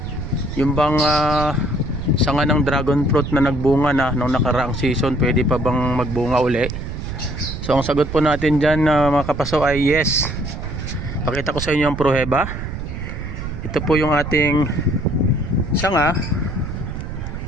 yung bang sanga ng dragon fruit na nagbunga na nung nakaraang season, pwede pa bang magbunga uli? So ang sagot po natin dyan mga kapaso ay yes. Pakita ko sa inyo ang pruheba. Ito po yung ating sanga.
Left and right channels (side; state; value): right; noise; rumble, 7 dB below the sound